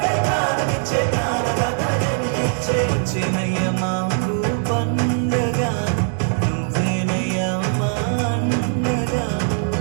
ప్రాణమిచ్చే ప్రాణదాత జన్మించే. చిన్నయ్య మాకు పండగ నువ్వేనయ్య మా అండగా.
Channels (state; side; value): silent; left; digital silence